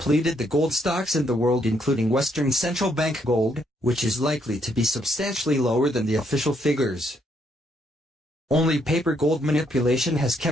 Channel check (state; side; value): normal; both; correlation 0.73